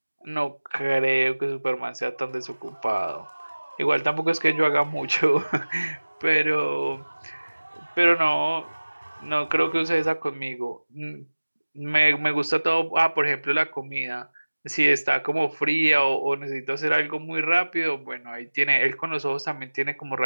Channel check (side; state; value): both; inverted; correlation -1.00